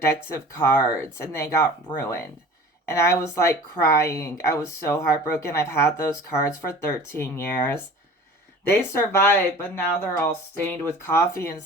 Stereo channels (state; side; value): normal; both; correlation 0.42